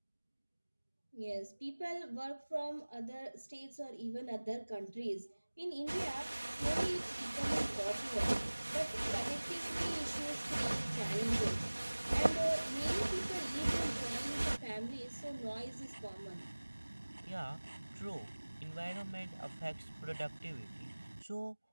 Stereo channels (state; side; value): inverted; both; correlation -1.00